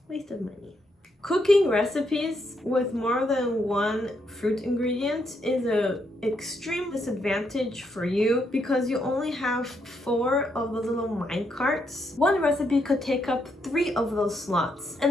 Waste of money. Cooking recipes with more than 1 fruit ingredient is an extreme disadvantage for you because you only have 4 of those little mine carts. One recipe could take up 3 of those slots,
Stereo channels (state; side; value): normal; both; correlation 0.77